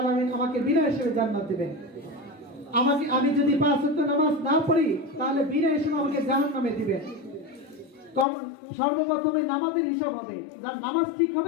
আমাকে বিনা হিসেবে জান্নাত দিবেন। আমি যদি 5 ওয়াক্ত নামাজ না পড়ি, তাহলে বিনা হিসেবে আমাকে জাহান্নামে দিবেন। সর্বপ্রথমে নামাজের হিসাব হবে, যার নামাজ ঠিক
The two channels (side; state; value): right; drops out; at 8.2 s